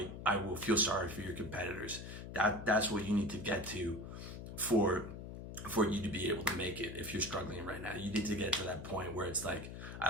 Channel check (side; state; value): left; noise; hum, 9 dB below the sound